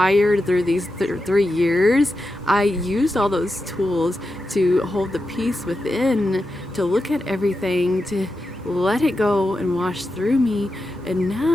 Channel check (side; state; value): both; normal; correlation 0.89